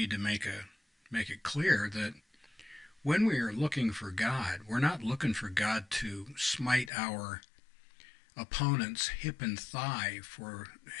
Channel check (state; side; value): drops out; right; at 6.9 s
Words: to make it clear that when we are looking for God, we're not looking for God to smite our opponent's hip and thigh for